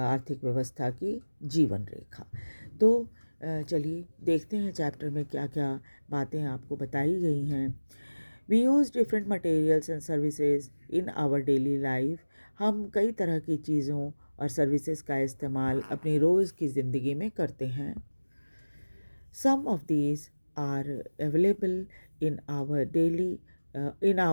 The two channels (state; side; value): inverted; both; correlation -1.00